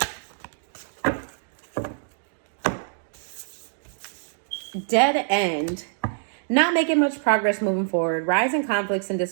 Dead end. Not making much progress moving forward. Rising conflicts and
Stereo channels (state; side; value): silent; left; digital silence